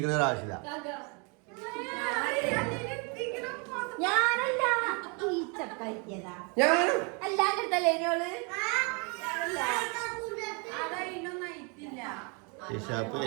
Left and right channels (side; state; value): left; quieter; 33.7 dB